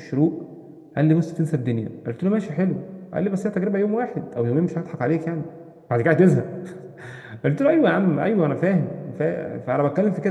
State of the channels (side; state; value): both; identical; correlation 1.00